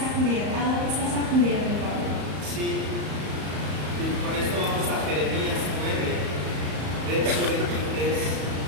¿A dónde estás acudiendo, Pablo? Sí, y con esto vamos a Jeremías 9, verso 23,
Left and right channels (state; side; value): late; left; 34 ms